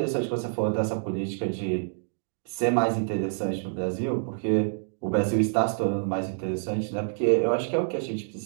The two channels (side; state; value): left; silent; digital silence